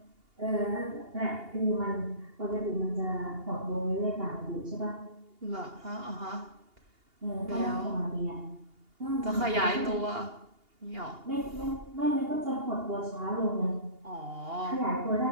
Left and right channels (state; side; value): late; left; 2.8 ms